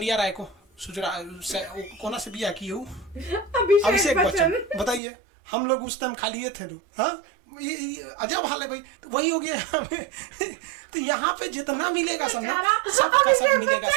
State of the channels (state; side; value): drops out; left; at 5.0 s